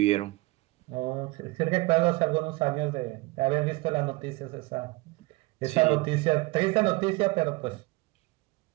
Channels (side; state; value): left; quieter; 22.4 dB